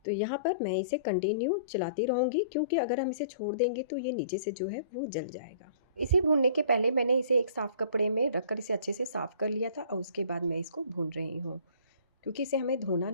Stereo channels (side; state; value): both; inverted; correlation -0.51